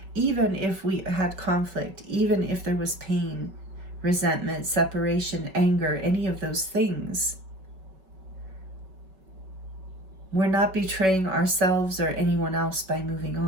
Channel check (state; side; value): late; left; 5.3 ms